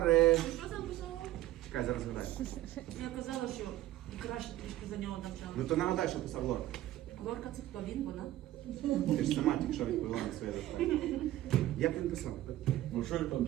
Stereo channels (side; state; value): left; quieter; 14.6 dB